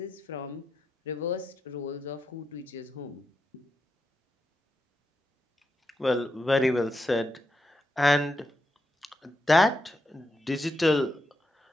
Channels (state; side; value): normal; both; correlation 0.85